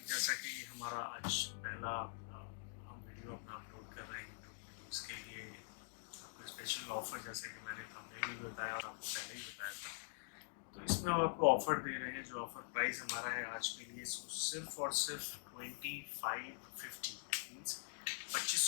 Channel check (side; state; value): right; silent; digital silence